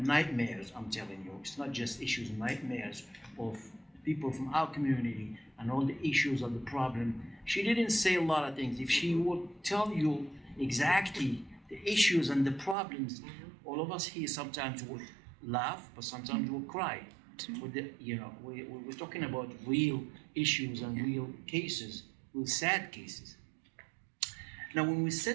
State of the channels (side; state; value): left; drops out; at 12.8 s